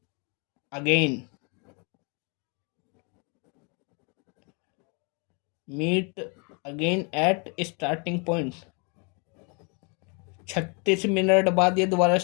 again, meet again at starting point. 36 minute बाद ये दोबारा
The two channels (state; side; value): quieter; right; 33.5 dB